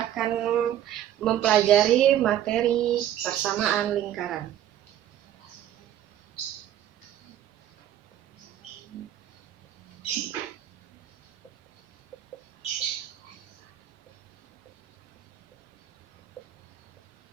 akan mempelajari materi persamaan lingkaran.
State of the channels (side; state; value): left; quieter; 11.5 dB